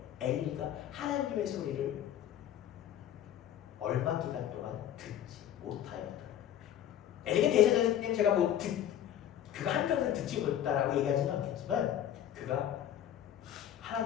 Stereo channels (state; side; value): quieter; right; 10.7 dB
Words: 엘리가 하나님의 소리를 얼마 기간 동안 듣지 못하였다. 엘리가 대제사장님 제가 그가 한평생 듣지 못했다라고 얘기하지는 않겠지만 그가